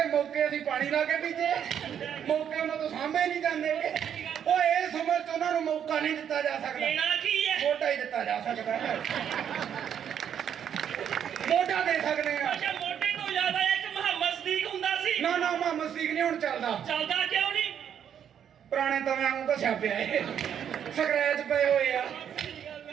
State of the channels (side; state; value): left; quieter; 8.8 dB